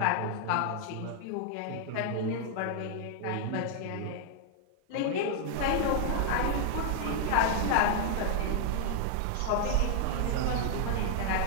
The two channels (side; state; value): both; different; correlation 0.00